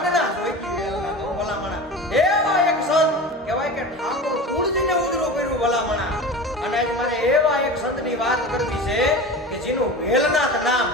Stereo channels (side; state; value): both; normal; correlation 0.31